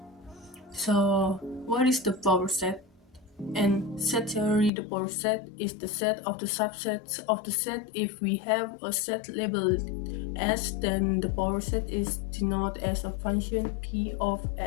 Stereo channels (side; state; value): right; drops out; at 4.7 s